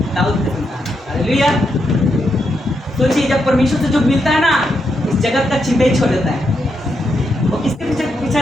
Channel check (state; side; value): normal; both; correlation 0.82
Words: दाऊद का संतान। हालेलुया। सोचिए जब परमेश्वर से जो मिलता है ना, इस जगत का चिंता ही छोड़ देता है। वो किसके पीछे पीछा